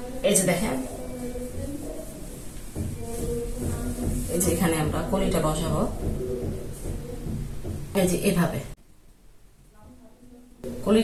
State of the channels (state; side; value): identical; both; correlation 1.00